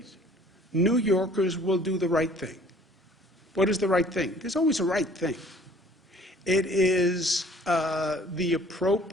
New Yorkers will do the right thing. What is the right thing? There's always a right thing. It is the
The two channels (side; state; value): both; normal; correlation 0.54